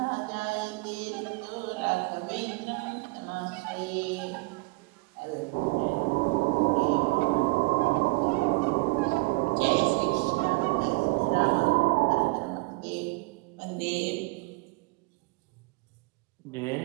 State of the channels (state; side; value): quieter; left; 25.4 dB